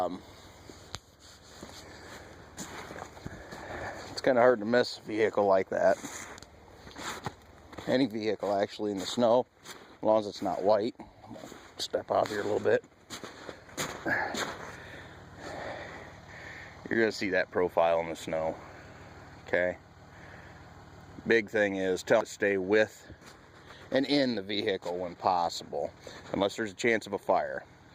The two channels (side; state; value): both; identical; correlation 1.00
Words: It's kind of hard to miss a vehicle like that. Any vehicle actually in the snow, as long as it's not white. I'm going to step out here a little bit. You're going to see that profile in the snow. Okay. Big thing is tell them to stay with and in the vehicle when possible, unless there's a chance of a fire.